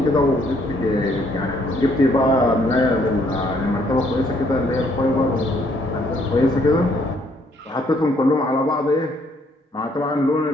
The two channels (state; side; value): normal; both; correlation 0.67